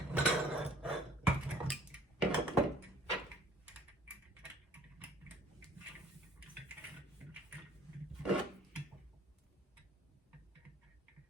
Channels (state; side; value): normal; both; correlation 0.55